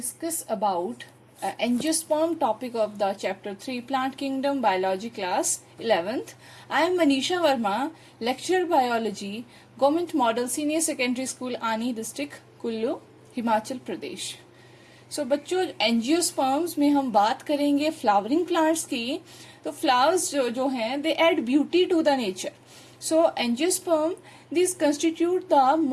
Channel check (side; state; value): both; identical; correlation 1.00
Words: about angiosperm topic of the chapter 3 Plant Kingdom Biology class 11th. I am Manisha Verma, lecturer biology, Government Model Senior Secondary School Ani District, Kullu, Himachal Pradesh. सो बच्चों angiosperms में हम बात करेंगे flowering plants की. तो flowers जो हैं they add beauty to the nature. So angiosperm, these constitute the